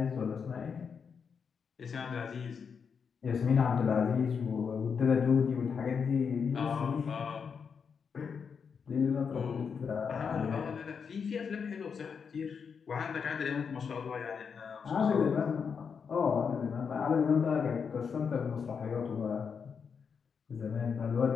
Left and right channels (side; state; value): right; quieter; 6.2 dB